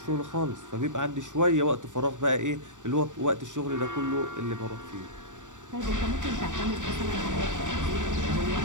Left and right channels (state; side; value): late; left; 0.86 ms